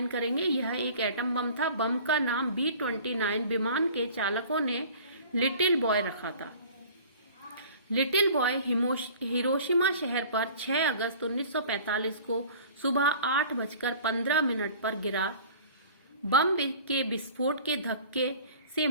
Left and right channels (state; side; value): inverted; both; correlation -0.45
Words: करेंगे, यह एक एटम बम था। बम का नाम B-29 विमान के चालकों ने लिटिल बॉय रखा था। लिटिल बॉय हिरोशिमा शहर पर 6 अगस्त 1945 को सुबह 8:15 पर गिरा। बम के विस्फोट के धक्के से